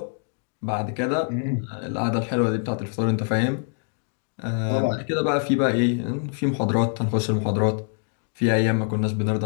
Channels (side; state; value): right; silent; 58 dB below the other